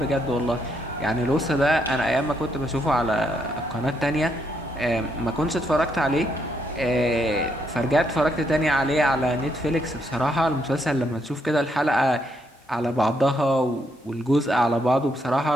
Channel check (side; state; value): both; normal; correlation 0.76